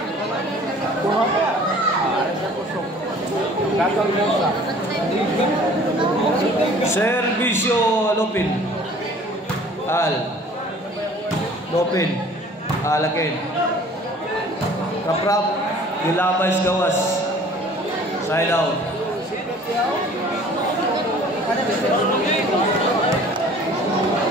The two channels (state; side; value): normal; both; correlation 0.50